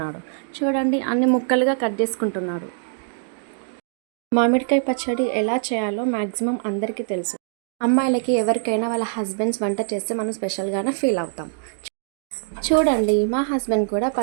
చూడండి, అన్ని ముక్కలుగా కట్ చేసుకుంటున్నాడు. మామిడికాయ పచ్చడి ఎలా చేయాలో మ్యాక్సిమం అందరికీ తెలుసు. అమ్మాయిలకి ఎవరికైనా వాళ్ళ హస్బెండ్స్ వంట చేస్తే మనం స్పెషల్గానే ఫీల్ అవుతాం. చూడండి, మా హస్బెండ్ కూడా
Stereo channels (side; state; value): left; silent; digital silence